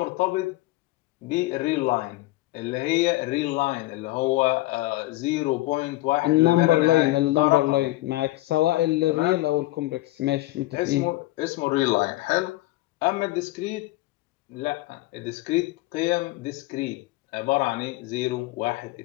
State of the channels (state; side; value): quieter; right; 18.6 dB